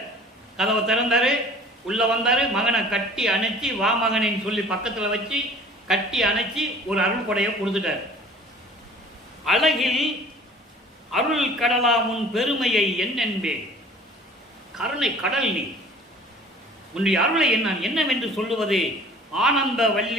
கதவை திறந்தாரு, உள்ள வந்தாரு, மகனை கட்டி அணைச்சி வா மகனின்னு சொல்லி பக்கத்தில் வச்சு கட்டி அணைச்சி ஒரு அருள் கொடையை கொடுத்துட்டாரு. அழகில் அருள் கடலா முன் பெருமையை என்னென்பேன், கருணை கடல் நீ, உன்னுடைய அருளை என்னவென்று சொல்லுவது? ஆனந்த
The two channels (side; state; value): both; normal; correlation 0.48